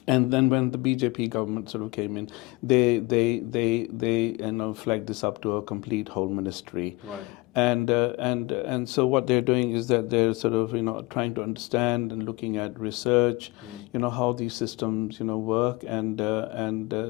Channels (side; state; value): right; quieter; 23.6 dB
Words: And then when the BJP government sort of came in, they flagged this up to a complete whole ministry. Right. And so what they're doing is that they're sort of trying to understand and looking at research, how these systems work, and